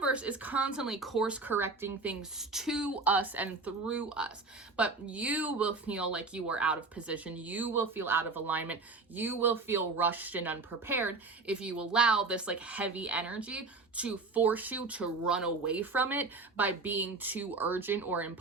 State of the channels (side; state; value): left; quieter; 3.8 dB